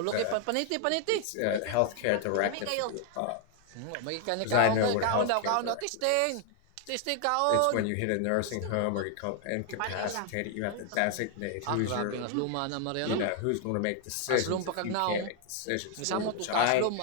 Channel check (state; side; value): different; both; correlation 0.00